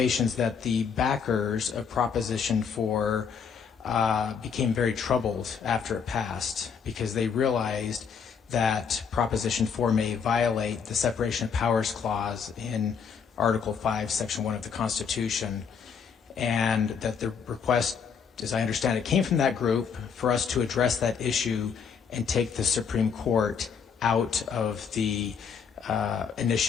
that the backers of Proposition 4 became very troubled after it passed because they realized that Proposition 4 may violate the Separation of Powers Clause in Article 5, Section 1 of the Constitution, and that the request, as I understand it, came from that group for us to address that issue and take the Supreme Court out of the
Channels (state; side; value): quieter; right; 6.5 dB